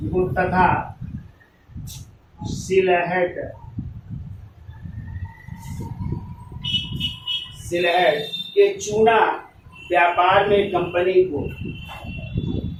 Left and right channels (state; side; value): identical; both; correlation 1.00